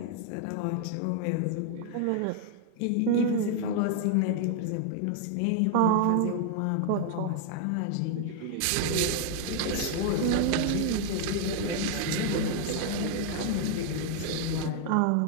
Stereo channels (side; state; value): both; different; correlation 0.00